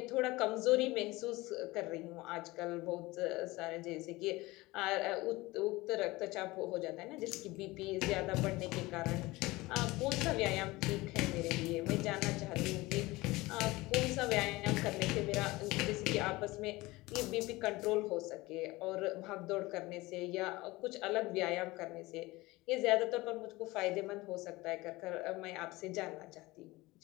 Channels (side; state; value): right; quieter; 20.8 dB